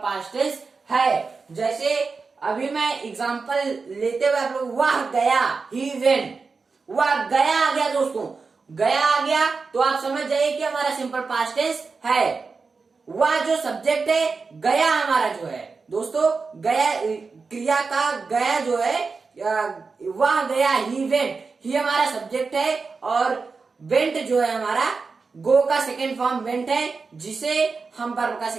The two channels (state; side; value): quieter; left; 4.6 dB